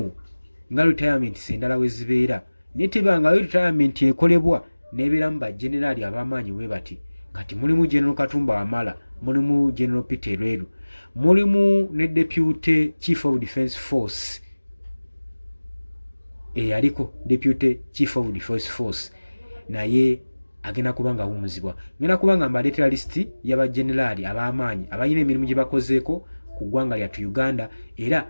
nga retirement endala we zibeera, naye tebangayo retirement ekolebwa n'ebeeramu bajenerali ab'amaanyi we bati. Kati mulimu General Katumba Wamala, mulimu General Peter Lweru, mulimu ne Deputy Chief of Defence Force aliko Deputy Chief of Defence Force naye agenda kubanga awummuzibwa. Ngenda kubanga mbaleetera lisiti y'abajenerali ab'amaanyi abalina emirimu gye bakozeeko ku ggwanga lyattu Uganda,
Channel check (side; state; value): both; inverted; correlation -1.00